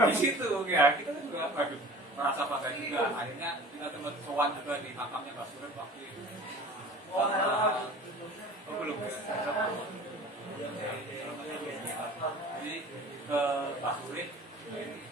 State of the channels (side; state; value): both; normal; correlation 0.43